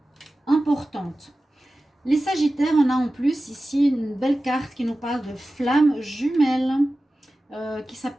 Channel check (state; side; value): normal; both; correlation 0.95